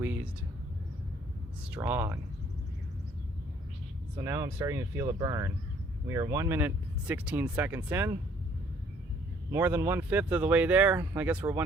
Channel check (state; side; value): normal; both; correlation 0.61